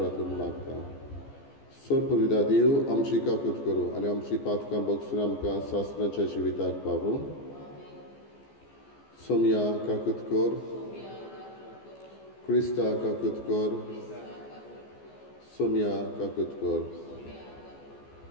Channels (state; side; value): late; right; 14 ms